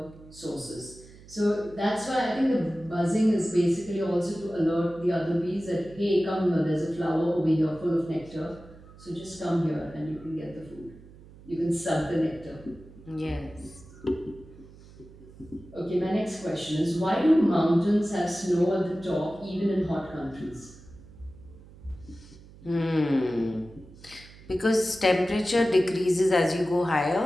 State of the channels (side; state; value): right; noise; hum, 21 dB below the sound